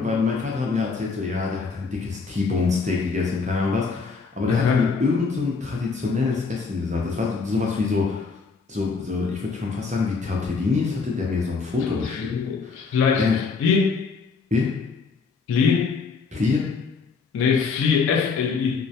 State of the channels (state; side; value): quieter; right; 4.8 dB